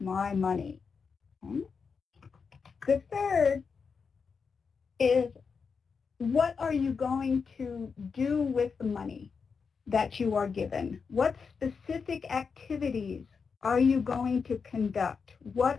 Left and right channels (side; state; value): right; quieter; 5.5 dB